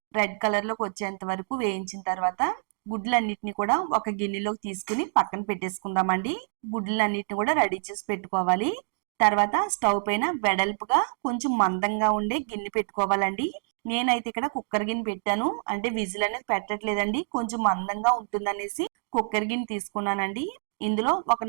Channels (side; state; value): left; silent; digital silence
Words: రెడ్ కలర్ లోకి వచ్చేంత వరకు వేయించిన తర్వాత గుడ్లన్నిటిని కూడా ఒక గిన్నెలోకి తీసుకుని పక్కన పెట్టేసుకుందామండి. గుడ్లన్నిటిని కూడా రెడీ చేసి పెట్టుకోవాలి. తర్వాత స్టవ్ పైన వెడల్పుగా కొంచెం మందంగా ఉండే గిన్నె పెట్టుకోవాలండి. నేనైతే ఇక్కడ కుక్కర్ గిన్నె పెట్టాను. అంటే విజిల్ అనేది పెట్టట్లేదండి, కొంచెం మందంగా ఉంటుందనేసి కుక్కర్ గిన్నె తీసుకున్నానండి. ఇందులో ఒక